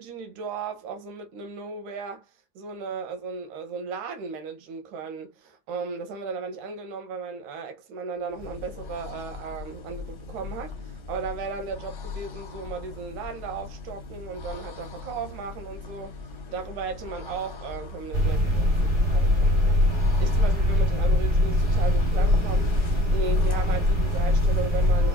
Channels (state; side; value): late; left; 4.8 ms